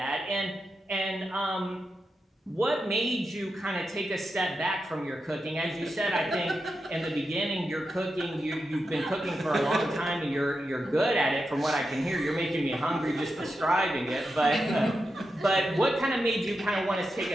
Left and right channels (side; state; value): both; normal; correlation 0.88